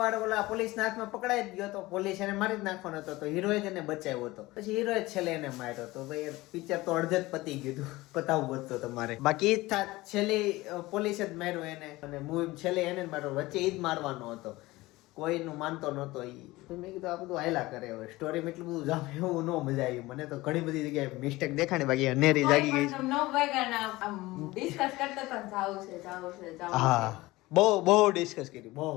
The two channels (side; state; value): right; quieter; 19.7 dB